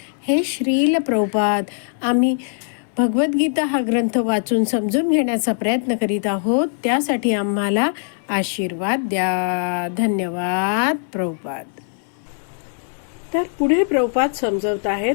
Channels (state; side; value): silent; right; digital silence